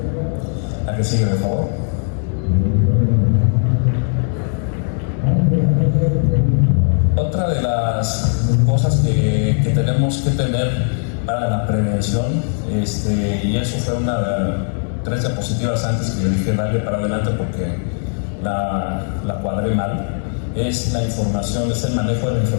¿A qué sigue, de favor? Otra de las cosas que tenemos que tener para la prevención, y eso fue tres diapositivas antes que le dije darle para adelante porque la cuadré mal, es la información, es el manejo de la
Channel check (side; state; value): right; silent; 55 dB below the other